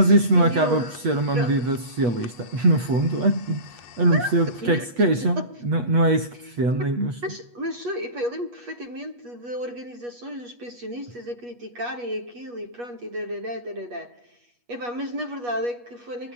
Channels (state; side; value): late; left; 8.3 ms